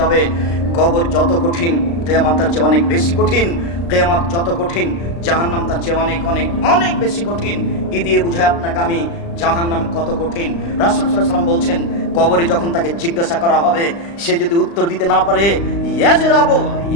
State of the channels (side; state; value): right; late; 35 ms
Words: কবর যত কঠিন কিয়ামত তার চেয়ে অনেক বেশি কঠিন। কিয়ামত যত কঠিন জাহান্নাম তার চেয়ে অনেক অনেক অনেক বেশি কঠিন। কি দিয়ে বুঝায় আপনাকে আমি জাহান্নাম কত কঠিন? রাসূল সাল্লাল্লাহু আলাইহি ওয়াসাল্লাম বলছেন কবরে যখন তাকে জিজ্ঞাসা করা হবে সে যদি উত্তর দিতে না পারে